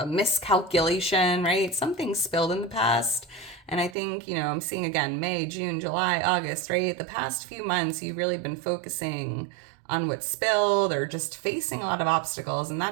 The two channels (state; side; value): drops out; left; at 4.0 s